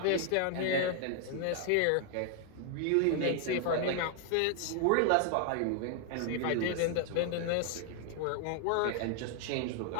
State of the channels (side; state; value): both; different; correlation 0.00